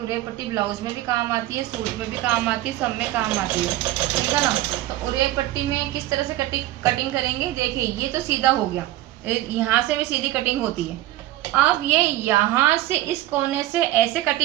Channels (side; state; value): left; quieter; 15.5 dB